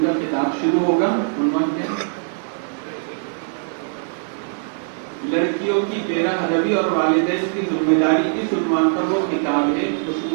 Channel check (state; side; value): silent; left; 65 dB below the other